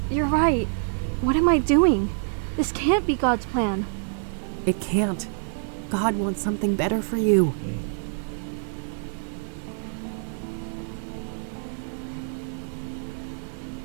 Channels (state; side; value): silent; left; digital silence